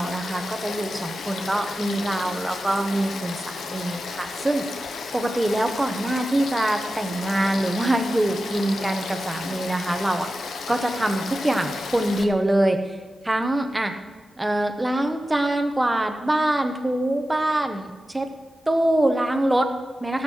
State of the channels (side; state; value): both; normal; correlation 0.93